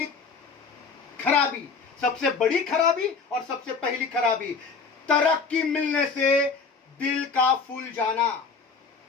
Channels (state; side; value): quieter; right; 5.0 dB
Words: खराबी, सबसे बड़ी खराबी और सबसे पहली खराबी, तरक्की मिलने से दिल का फूल जाना।